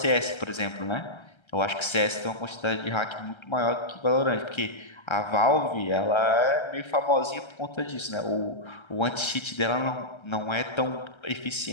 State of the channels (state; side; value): late; right; 1.3 ms